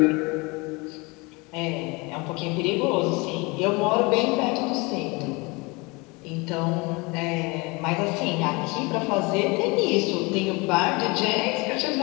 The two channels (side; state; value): right; quieter; 26.6 dB